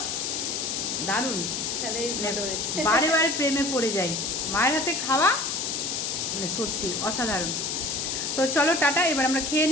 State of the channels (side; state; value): left; noise; hiss, 2 dB below the sound